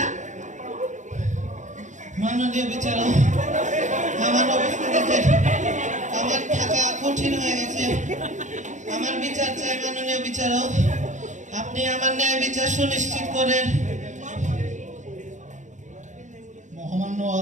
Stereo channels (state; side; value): late; left; 0.35 ms